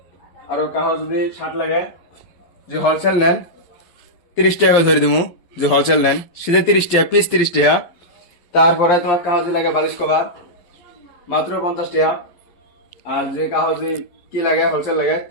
আর কাহো যদি শার্ট লাগে যে হোলসেল নেন 30 টাকা ধরে দিমু, যে হোলসেল নেন সিধে 30 টাকা পিস 30 টাকা। তারপরে তোমার কাগজ লাগে বালিশ কভার মাত্র 50 টাকা। আর যে কাগজ কি লাগে হোলসেল লাগে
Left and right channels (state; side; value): late; right; 12 ms